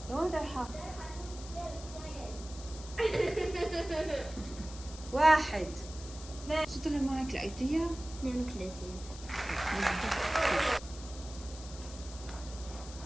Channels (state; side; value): noise; left; hiss, 15 dB below the sound